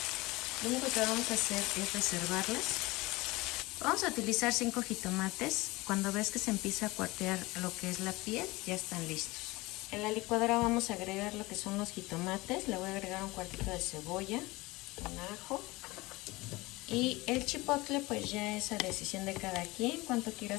Lo único que vamos a hacer es reservarlas. Vamos a utilizar 5 jitomates. Cuando ves que se empieza a cuartear lo que es la piel, ya están listos. En la licuadora vamos a agregar lo que son los jitomates. Le voy a agregar 1/4 de cebolla, un ajo. Y el chipotle pues ya es a decisión de cada quien, cuánto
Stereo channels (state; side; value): quieter; right; 21.7 dB